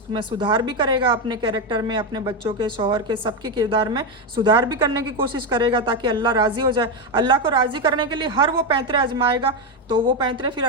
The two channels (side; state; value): both; normal; correlation 0.09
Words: सुधार भी करेगा, अपने कैरेक्टर में, अपने बच्चों के, शौहर के, सबके किरदार में सुधार भी करने की कोशिश करेगा ताकि अल्लाह राज़ी हो जाए। अल्लाह को राज़ी करने के लिए हर वो पैंतरे आजमाएगा, तो वो पैंतरे फिर